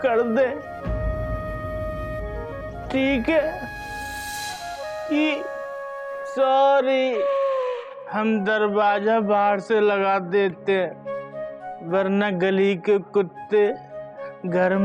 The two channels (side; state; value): both; identical; correlation 1.00